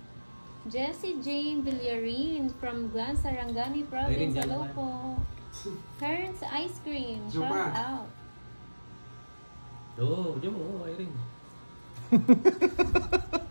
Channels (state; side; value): inverted; both; correlation -1.00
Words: Jessie Jane Villarin from Glan Sarangani Province. Ayun, dyan Hello naman. po. Parents Ice Cream. Diyo Shout ba? out. Oo, diyan mo, Irene.